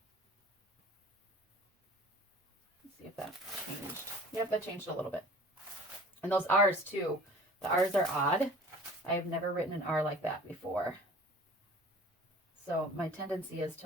Let's see if that changed. Yep, that changed a little bit. And those R's too. The R's are odd. I've never written an R like that before. So my tendency is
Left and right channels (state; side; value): normal; both; correlation 0.45